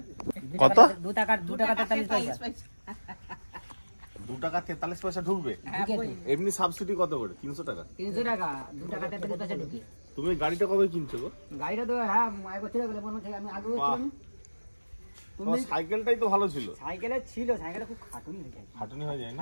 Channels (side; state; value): both; inverted; correlation -1.00